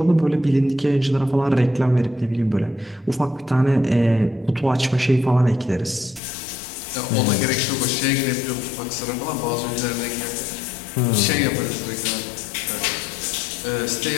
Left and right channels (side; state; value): right; drops out; at 6.2 s